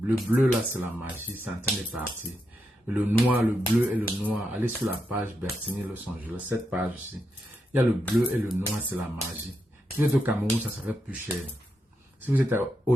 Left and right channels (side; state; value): both; normal; correlation 0.84